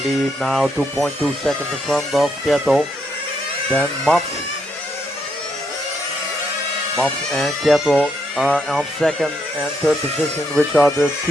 lead now, 2.2 seconds in front of Kjetil. Then Mats. Mats and Kjetil are on second and third position, which are the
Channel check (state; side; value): normal; both; correlation 0.77